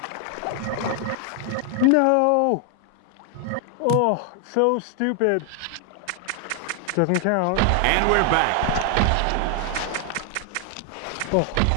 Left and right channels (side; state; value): both; different; correlation 0.00